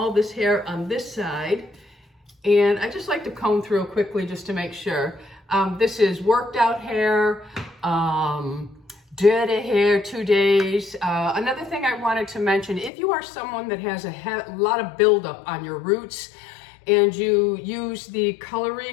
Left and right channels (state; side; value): drops out; right; at 12.9 s